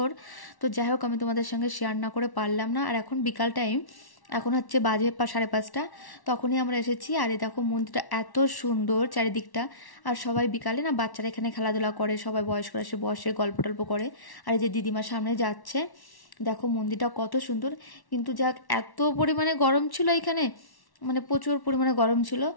তো যাই হোক আমি তোমাদের সঙ্গে শেয়ার না করে পারলাম না। আর এখন বিকাল টাইম, এখন হচ্ছে বাজে 5:30। তখনই আমরা এসেছি। আর এই দেখো, মন্দিরটা এত সুন্দর চারিদিকটা। আর সবাই বিকালে না, বাচ্চারা এখানে খেলাধুলা করে, সবাই বয়স্করা এসে বসে গল্প টল্প করে। আর এই যে দিদিমার সামনে যাচ্ছে, দেখো মন্দিরটা কত সুন্দর। কিন্তু যাক, এত পরিমাণে গরম ছিল এখানে, মানে প্রচুর পরিমাণে গরম ছিল।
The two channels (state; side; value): late; right; 1.1 ms